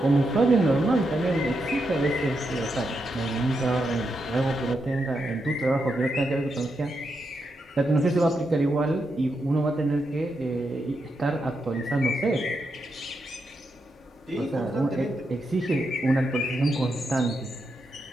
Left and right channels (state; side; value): normal; both; correlation 0.84